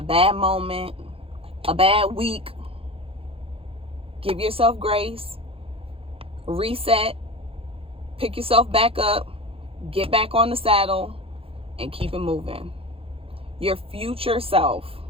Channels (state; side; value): late; left; 0.27 ms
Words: bad moment, a bad week, give yourself grace. Reset, pick yourself back up, get back on the saddle, and keep it moving. Your future self